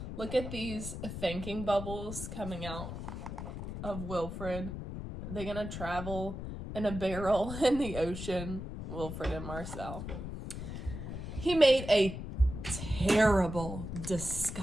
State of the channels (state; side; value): noise; left; rumble, 7 dB below the sound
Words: Look at these thinking bubbles coming out of Wilfred. They're going to travel in a barrel in the ocean, Wilfred and Marcel. He made a terrible